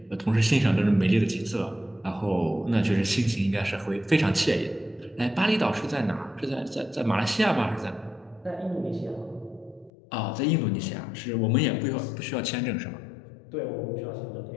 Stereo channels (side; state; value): right; drops out; at 9.9 s